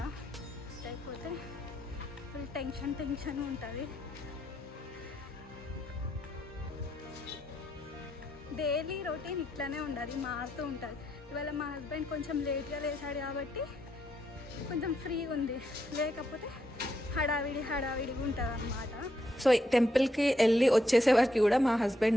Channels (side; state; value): both; normal; correlation 0.78